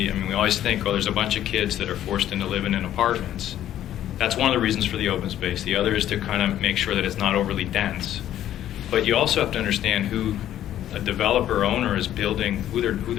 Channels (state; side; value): quieter; right; 11.9 dB